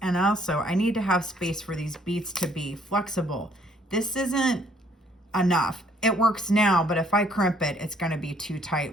And also, I need to have space for these beads to be flexible. This isn't enough. It works now, but if I crimp it, it's going to be too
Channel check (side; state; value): both; normal; correlation 0.64